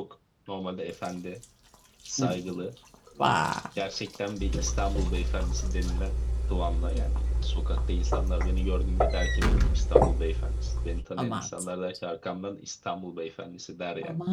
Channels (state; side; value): identical; both; correlation 1.00